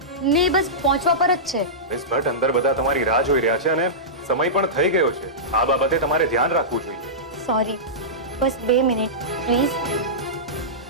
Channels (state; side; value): normal; both; correlation -0.16